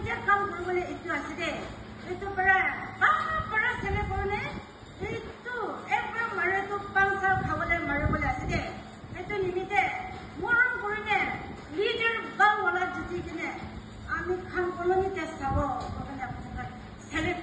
কাম কৰিবলৈ এইটো আছে দে এইটো পৰা চেলে কৰিলে এইটো একবাৰ মাৰেতো 5 সাল খাবলৈ মাৰিবলৈ আছে দে এইটো নিমিত্তে মৰম কৰিলে লিডাৰ বাংলা জিতি কিনে আমি খান কলনীতে চাব কাৰণে আপোনাক চেলেক্ট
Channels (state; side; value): identical; both; correlation 1.00